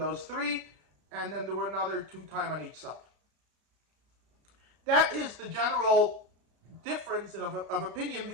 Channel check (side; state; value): left; late; 33 ms